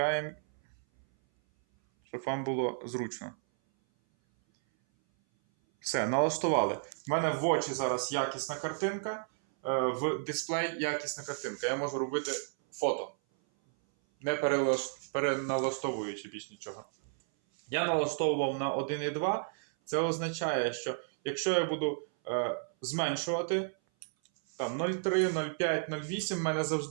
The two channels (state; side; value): silent; left; 56 dB below the other